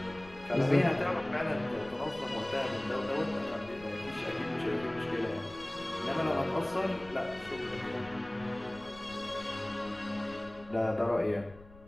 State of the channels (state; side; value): noise; left; rumble, 20 dB below the sound